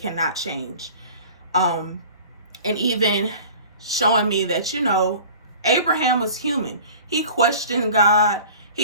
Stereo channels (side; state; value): both; inverted; correlation -0.43